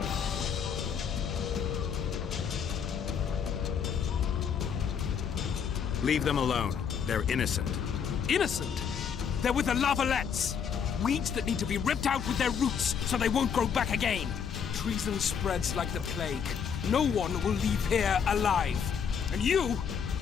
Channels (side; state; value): right; quieter; 7.2 dB